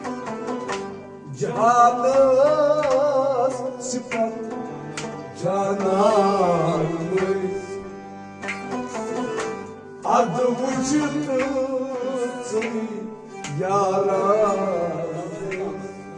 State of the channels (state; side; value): identical; both; correlation 1.00